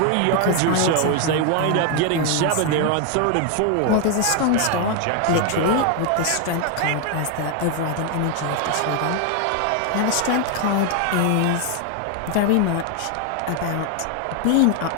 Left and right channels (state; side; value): different; both; correlation 0.00